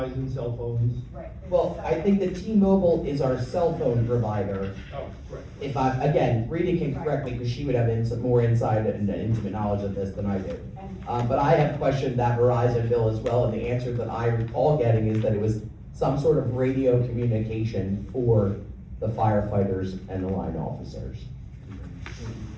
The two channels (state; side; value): identical; both; correlation 1.00